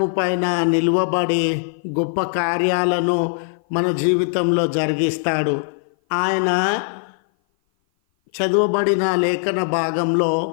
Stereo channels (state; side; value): silent; right; 56 dB below the other